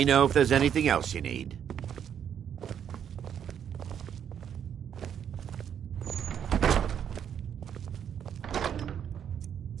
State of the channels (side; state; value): left; quieter; 8.7 dB